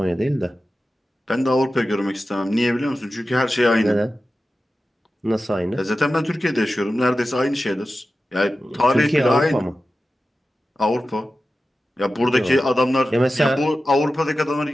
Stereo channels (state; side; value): normal; both; correlation 0.94